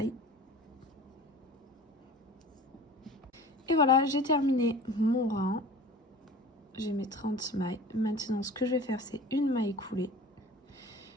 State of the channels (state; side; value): normal; both; correlation 0.41